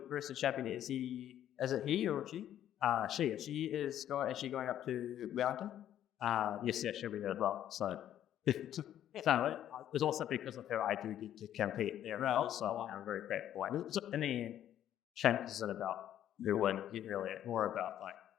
champion is it he or she? She is going up to Wellington? Yes, she'll be there as well. So it's also because of her I do get to compete there as well. So I'm very grateful. In the end, champs isn't about who wins. It's really more about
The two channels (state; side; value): quieter; right; 11.2 dB